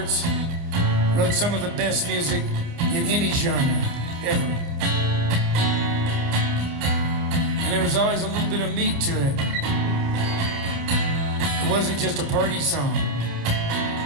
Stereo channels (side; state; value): left; late; 29 ms